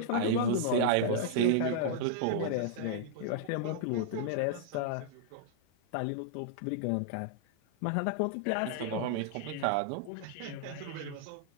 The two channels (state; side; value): different; both; correlation -0.01